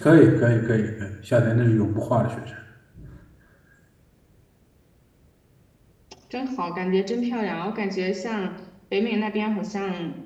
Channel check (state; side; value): identical; both; correlation 1.00